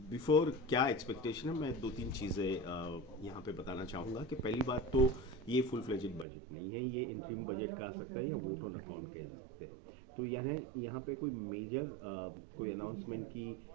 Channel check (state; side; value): drops out; left; at 6.2 s